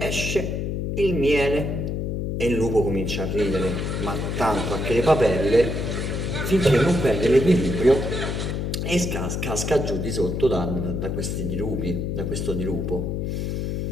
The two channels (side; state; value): left; noise; hum, 2 dB below the sound